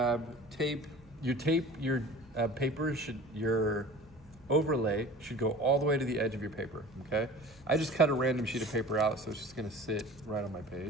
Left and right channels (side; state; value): right; noise; hum, 25 dB below the sound